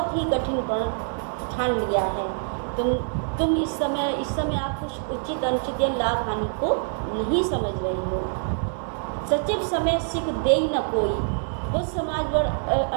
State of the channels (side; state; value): left; silent; 62 dB below the other